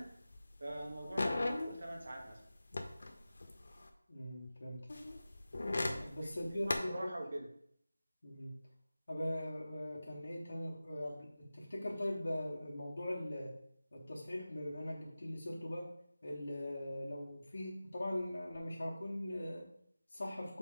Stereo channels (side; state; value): both; inverted; correlation -0.96